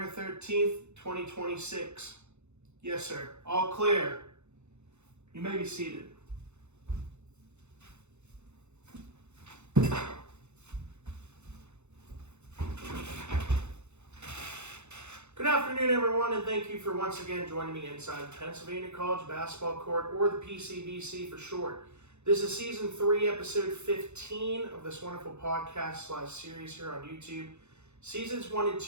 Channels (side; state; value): left; late; 0.82 ms